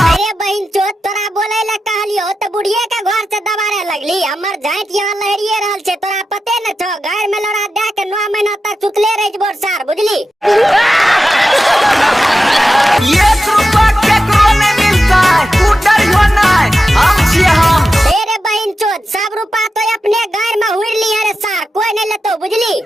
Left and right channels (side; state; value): both; normal; correlation 0.91